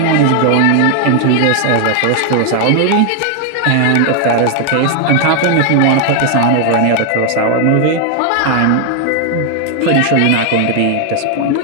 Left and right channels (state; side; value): different; both; correlation 0.00